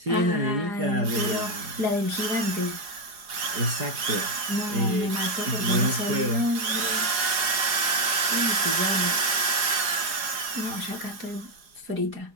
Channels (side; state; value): left; late; 4.8 ms